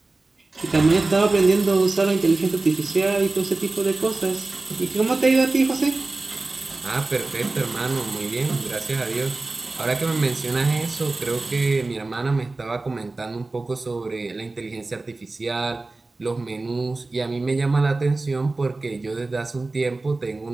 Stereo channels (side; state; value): left; quieter; 3.3 dB